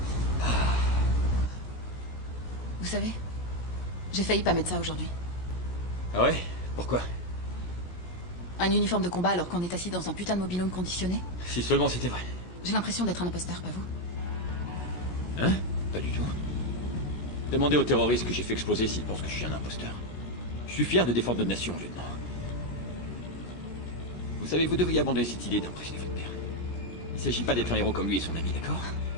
Vous savez, j'ai failli pas mettre ça aujourd'hui. Ah ouais? Pourquoi? Un uniforme de combat alors qu'on est assis dans un putain de mobil-home conditionné? Si seulement c'était vrai. J'ai l'impression d'être un imposteur, pas vous? Hein? Pas du tout. Demandez aux terroristes que j'ai fait exploser s'ils pensent que je suis un imposteur. Je suis fier de défendre notre nation, lieutenant. Vous savez, vous devriez abandonner cette idée d'impressionner votre père. Il ne s'agit pas d'être un héros comme lui et son ami, d'accord?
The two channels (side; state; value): right; late; 16 ms